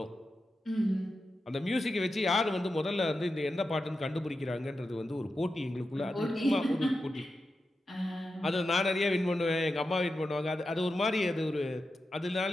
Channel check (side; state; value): both; normal; correlation 0.90